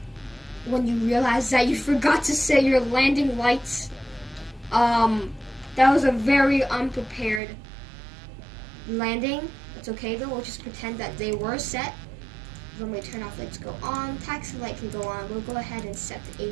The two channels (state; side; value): drops out; left; at 7.4 s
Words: when you realize that you forgot to set your landing lights. That was a very unprepared landing. It's okay though, we'll just pretend that they were set. Runway turn-off lights go on, taxi light can go on. We'll go ahead and set the